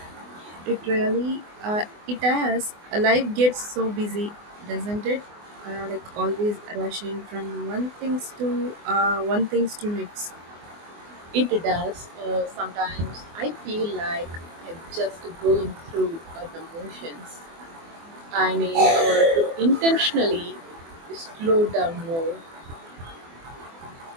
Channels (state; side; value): late; left; 24 ms